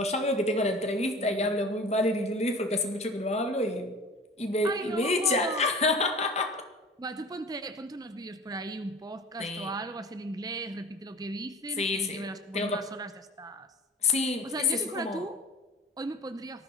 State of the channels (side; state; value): both; normal; correlation 0.40